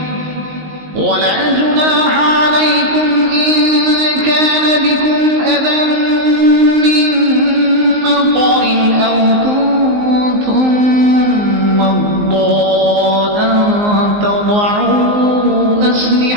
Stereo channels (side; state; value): left; late; 19 ms